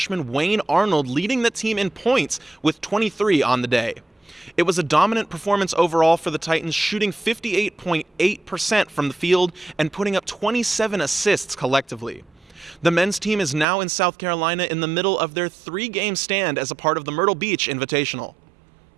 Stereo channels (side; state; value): left; drops out; at 13.7 s